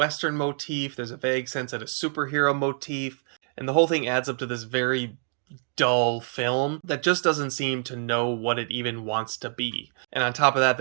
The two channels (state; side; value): silent; left; 60 dB below the other